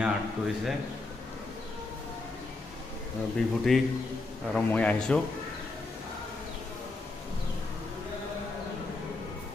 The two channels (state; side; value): quieter; right; 3.3 dB